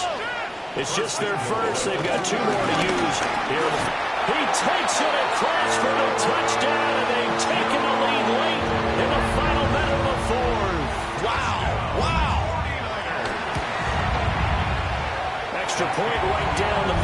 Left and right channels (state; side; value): identical; both; correlation 1.00